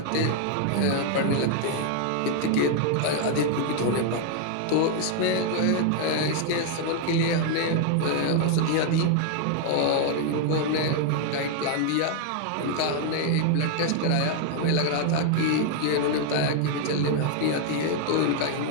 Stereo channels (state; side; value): different; both; correlation 0.00